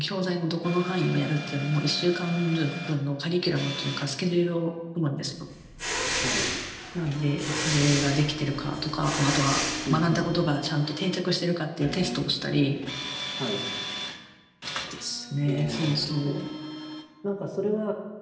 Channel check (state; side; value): identical; both; correlation 1.00